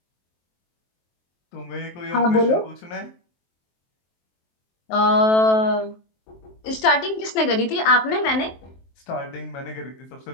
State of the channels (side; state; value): right; late; 23 ms